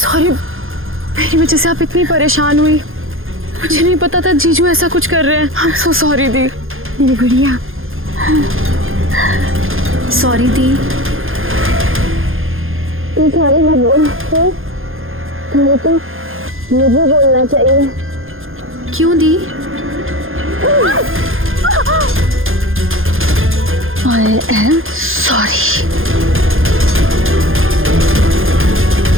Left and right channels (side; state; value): left; late; 0.60 ms